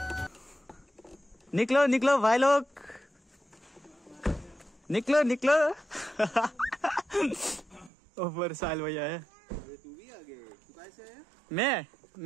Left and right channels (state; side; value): drops out; left; at 7.9 s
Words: निक्लो निक्लो भाइ लोग, निक्लो निक्लो। ऊपर साहिल भैया है। तू भी आ गए? तू कैसे है?